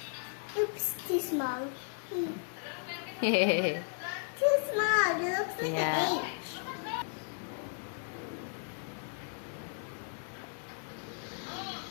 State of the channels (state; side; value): silent; right; 55 dB below the other